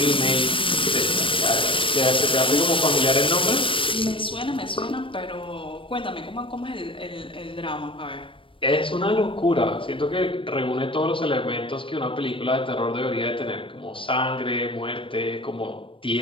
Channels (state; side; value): late; right; 0.25 ms